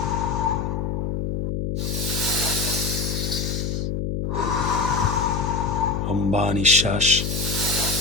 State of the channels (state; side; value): noise; left; hum, 1 dB below the sound